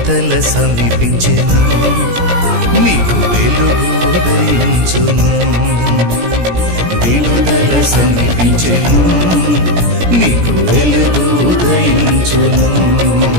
సమీపించెను, నీకు వెలుగు ఉదయించును. విడుదల సమీపించెను, నీకు వెలుగు ఉదయించును.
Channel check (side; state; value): left; late; 17 ms